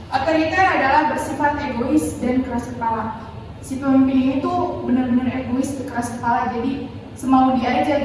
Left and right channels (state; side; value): identical; both; correlation 1.00